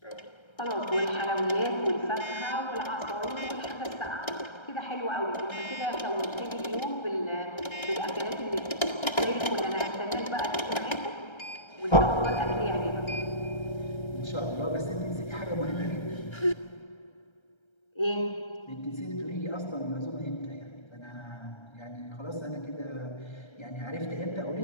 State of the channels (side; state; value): right; late; 1.3 ms